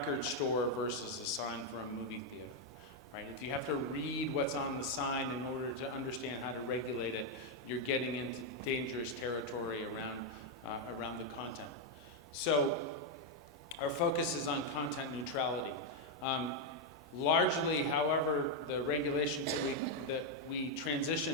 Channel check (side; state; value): both; normal; correlation 0.01